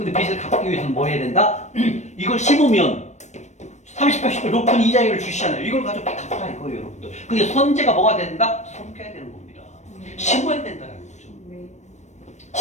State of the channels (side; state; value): right; late; 0.34 ms